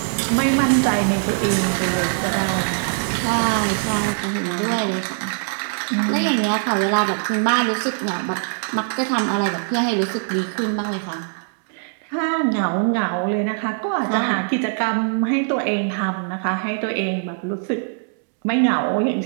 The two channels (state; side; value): silent; left; digital silence